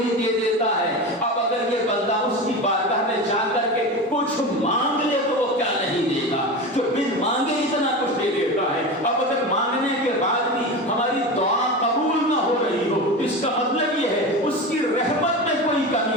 دے دیتا ہے. اب اگر یہ بندہ اس کی بارگاہ میں جا کر کے کچھ مانگ لے تو وہ کیا نہیں دے گا, جو بن مانگے اتنا کچھ دے دیتا ہے. اب اگر مانگنے کے بعد بھی ہماری دعا قبول نہ ہو رہی ہو تو اس کا مطلب یہ ہے اس کی رحمت میں کوئی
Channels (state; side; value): normal; both; correlation 0.25